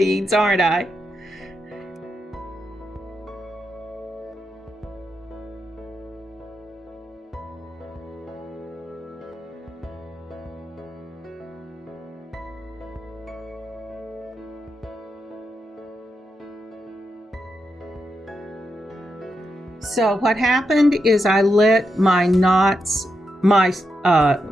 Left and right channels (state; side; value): normal; both; correlation 0.85